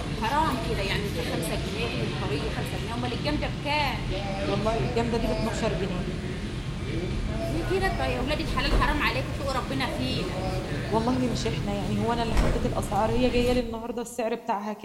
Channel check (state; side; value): identical; both; correlation 1.00